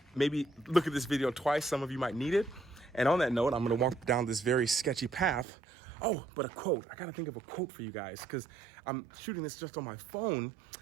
Maybe look at this video twice. Some of you might need it. And on that note, I'm going to walk down this very sketchy path. Oh, but a quote. I got to think of a quote for you guys because I'm shooting this just on my phone.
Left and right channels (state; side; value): drops out; left; at 5.5 s